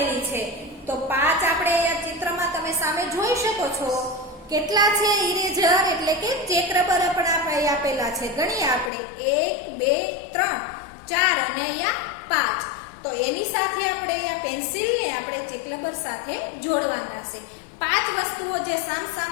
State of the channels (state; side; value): drops out; right; at 8.9 s